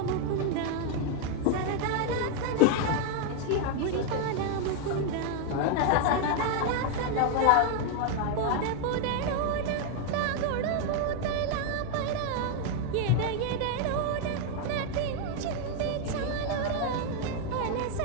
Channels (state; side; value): different; both; correlation 0.01